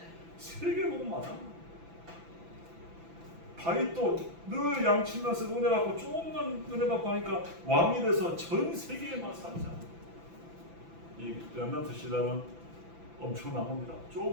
세계 보고 맞아. 다윗도 늘 양치면서 은혜 받고 조금만 은혜 받고 하니까 왕이 돼서 전 세계에만 살잖아. 이 렘넌트 시대는 엄청난 겁니다.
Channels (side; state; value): left; late; 6.0 ms